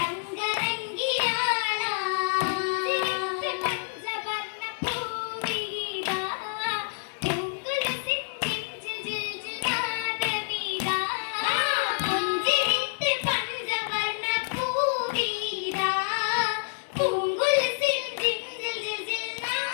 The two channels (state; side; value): silent; right; digital silence